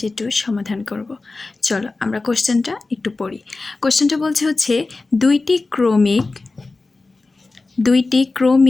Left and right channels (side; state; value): right; quieter; 3.5 dB